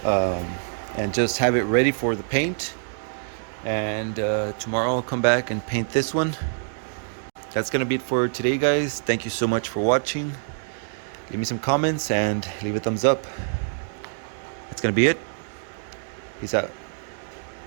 and just have it ready for the paint. And tomorrow I'll come back and paint this one. That's gonna be it for today, guys. Thank you so much for watching. Leave me some comments and leave a thumbs up. That's gonna be it. Peace out.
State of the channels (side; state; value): left; silent; digital silence